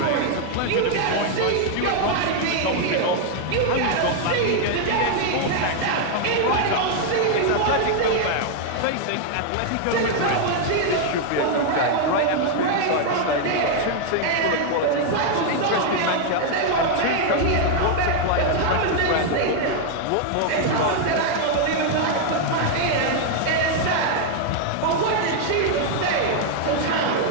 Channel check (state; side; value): different; both; correlation 0.00